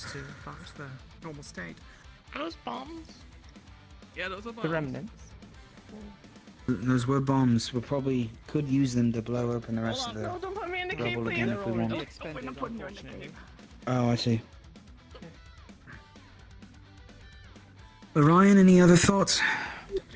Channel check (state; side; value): identical; both; correlation 1.00